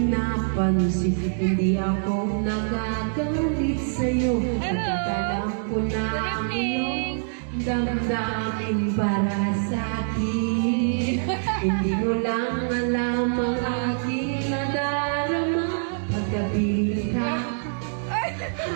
hindi ako nagagalit sa'yo. Pagkakalam ko na ang iyong damdamin para sa'kin. Hindi mo lang alam ang aking nadarama pagkapiling ka.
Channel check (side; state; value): left; silent; digital silence